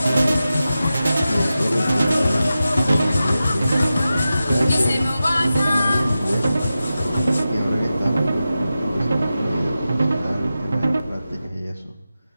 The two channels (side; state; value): both; inverted; correlation -0.93